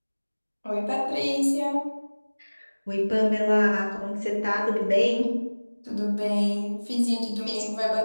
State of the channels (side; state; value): both; inverted; correlation -1.00